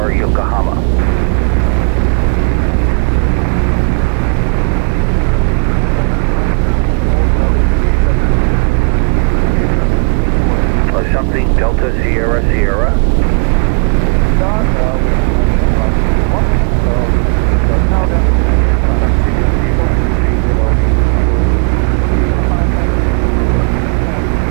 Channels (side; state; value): left; quieter; 39.0 dB